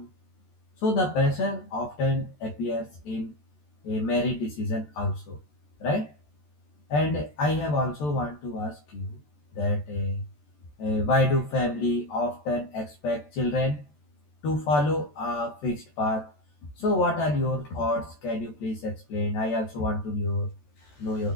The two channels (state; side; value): late; right; 14 ms